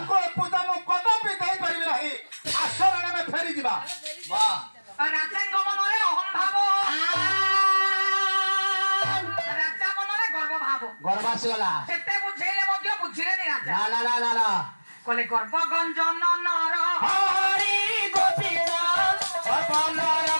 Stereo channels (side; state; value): both; inverted; correlation -1.00